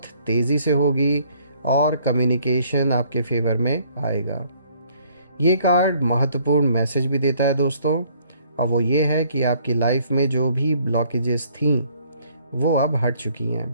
तेज़ी से होगी और कम्युनिकेशन आपके फेवर में आएगा। ये कार्ड महत्वपूर्ण मैसेज भी देता है दोस्तों, और वो ये है कि आपकी लाइफ में जो भी ब्लॉकेजेस थी वो अब हट चुकी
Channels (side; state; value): both; inverted; correlation -0.63